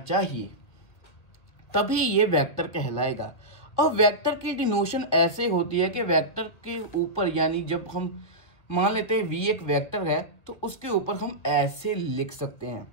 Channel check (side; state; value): right; late; 2.1 ms